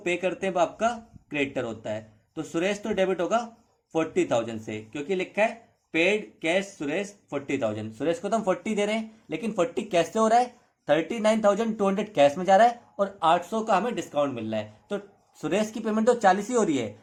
करते हैं वो आपका क्रेडिटर होता है। तो सुरेश तो डेबिट होगा 40,000 से, क्योंकि लिखा है पेड कैश सुरेश 40,000। सुरेश को तो हम 40 दे रहे हैं, लेकिन 40 कैश से हो रहा है, 39,200 कैश में जा रहा है, और 800 का हमें डिस्काउंट मिल रहा है। तो सुरेश की पेमेंट तो 40 ही हो रही है,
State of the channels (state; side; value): identical; both; correlation 1.00